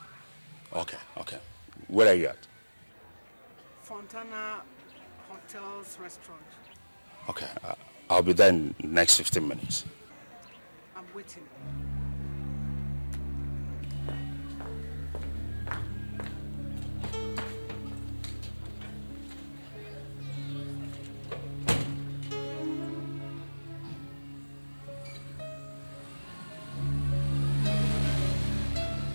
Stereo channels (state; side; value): inverted; both; correlation -1.00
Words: Okay. Where are you at? Fontana Hotels Restaurant. Okay, I'll be there in the next 15 minutes. I'm waiting.